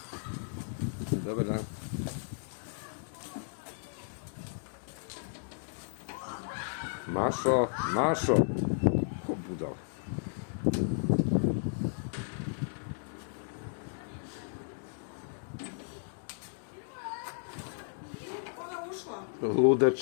Dobar dan. Mašo, Mašo. O, budal.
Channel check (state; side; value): silent; right; digital silence